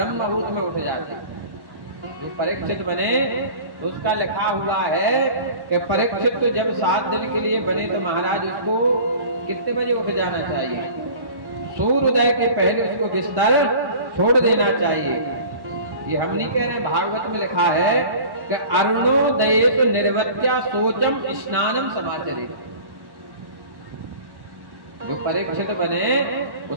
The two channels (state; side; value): late; left; 1.1 ms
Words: मुहूर्त में उठ जाते। जो परीक्षित बने उसका लिखा हुआ है कि परीक्षित तो जब 7 दिन के लिए बने तो महाराज उसको कितने बजे उठ जाना चाहिए? सूर्योदय के पहले उसको बिस्तर छोड़ देना चाहिए। ये हम नहीं कह रहे, भागवत में लिखा है कि अरुणोदयेत निर्वत्या शोचम स्नानम समाचरेत्। जो परीक्षित बने